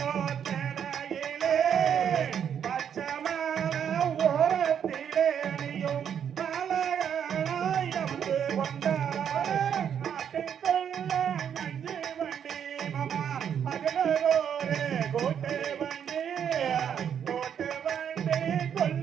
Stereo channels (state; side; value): quieter; left; 8.4 dB